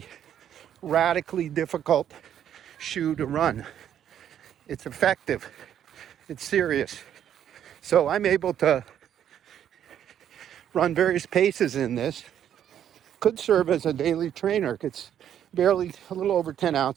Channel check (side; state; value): left; quieter; 10.0 dB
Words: radically difficult shoe to run. It's effective. It's serious. So I'm able to run various paces in this. Could serve as a daily trainer. It's barely a little over 10